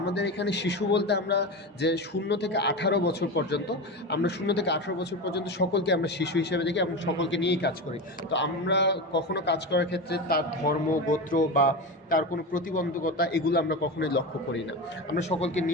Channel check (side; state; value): both; normal; correlation 0.22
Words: এখানে শিশু বলতে আমরা যে 0 থেকে 18 বছর পর্যন্ত, আমরা 0 থেকে 18 বছর পর্যন্ত সকলকে আমরা শিশু হিসেবে দেখি এবং সকলকে নিয়েই কাজ করি। তো আমরা কখনো কাজ করার ক্ষেত্রে তার ধর্ম, গোত্র বা তার কোনো প্রতিবন্ধকতা এগুলো আমরা কখনোই লক্ষ্য করি না, আমরা সকলকে